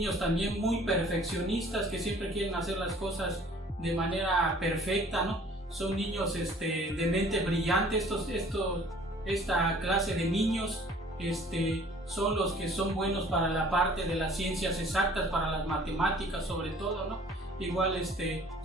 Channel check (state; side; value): normal; both; correlation 0.53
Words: también muy perfeccionistas que siempre quieren hacer las cosas de manera perfecta, ¿no? Son niños de mente brillante. Esta clase de niños son los que son buenos para la parte de las ciencias exactas, para las matemáticas sobre todo, ¿no? Igual